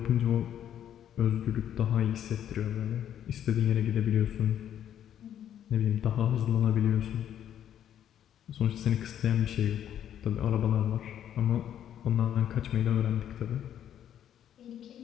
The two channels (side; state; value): right; quieter; 10.2 dB